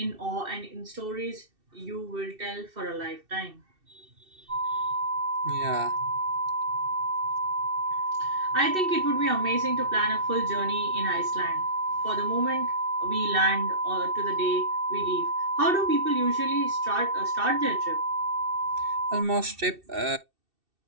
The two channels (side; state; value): left; late; 2.6 ms